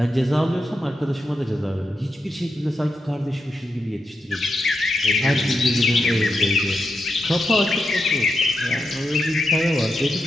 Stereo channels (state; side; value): normal; both; correlation 0.86